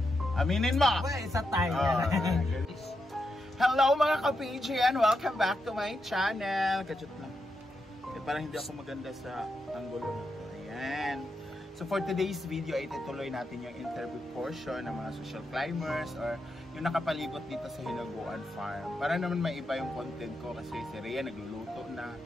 Aminin mo! Well, isa tayo. Hello mga ka-PGN! Welcome back to my channel! Kachut lang. Parang hindi ako maganda sa angulo na to. Ayan. So for today's video ay itutuloy natin yung interview portion ng mga social climbers or yung nakapalibot dito sa Hinaguan Farm. Para naman may iba yung content ko kasi si Rhea nagluluto na.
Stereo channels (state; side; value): normal; both; correlation 0.85